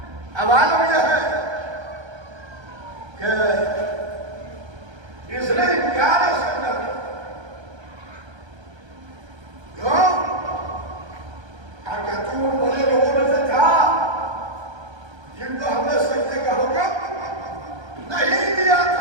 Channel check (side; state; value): left; late; 1.3 ms